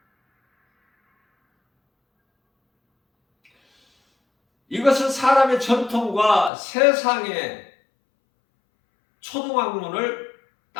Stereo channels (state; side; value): drops out; right; at 6.5 s